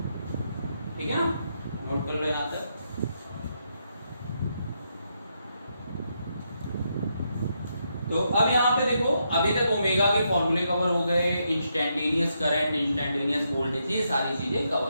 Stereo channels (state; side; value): inverted; both; correlation -0.80